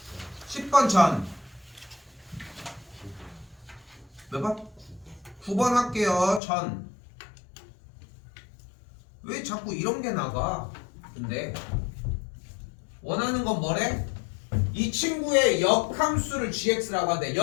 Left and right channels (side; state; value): right; drops out; at 6.4 s